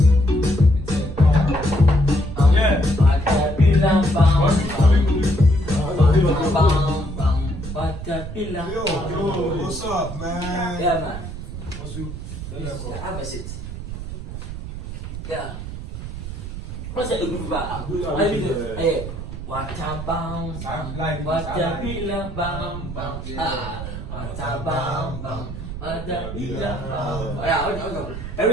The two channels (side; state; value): right; noise; rumble, 8 dB below the sound